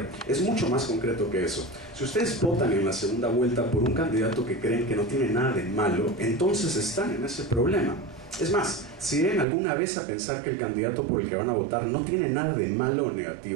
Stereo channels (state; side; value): drops out; left; at 9.5 s